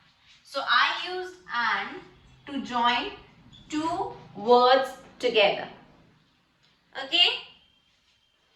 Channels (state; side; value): identical; both; correlation 1.00